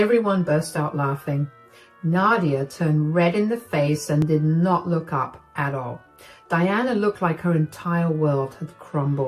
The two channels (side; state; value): both; identical; correlation 1.00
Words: burst out laughing. Nadia turned red in the face and did not look up at all. Diana looked like her entire world had